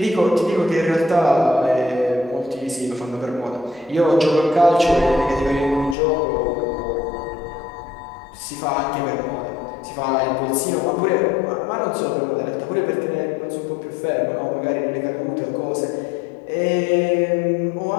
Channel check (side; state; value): right; drops out; at 6.0 s